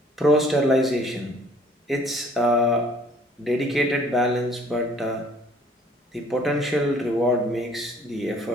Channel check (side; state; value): both; normal; correlation 0.57